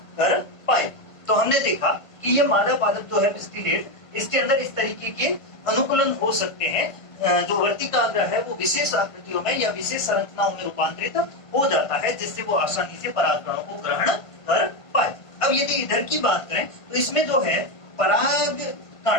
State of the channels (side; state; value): right; late; 1.5 ms